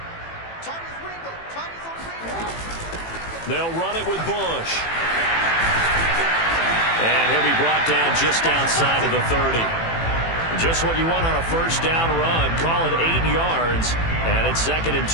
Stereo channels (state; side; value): late; right; 18 ms